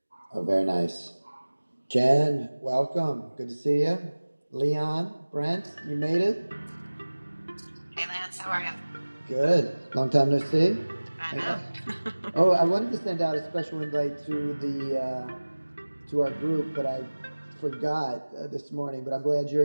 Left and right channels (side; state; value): both; inverted; correlation -1.00